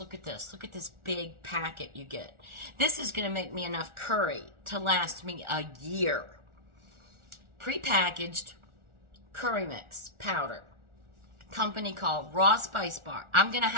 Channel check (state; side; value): late; left; 1.4 ms